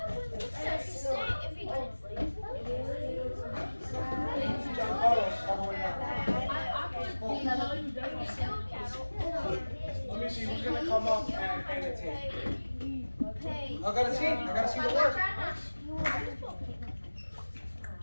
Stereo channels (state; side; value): inverted; both; correlation -1.00